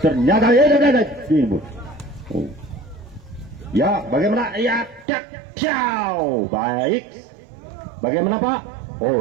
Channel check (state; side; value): drops out; left; at 5.1 s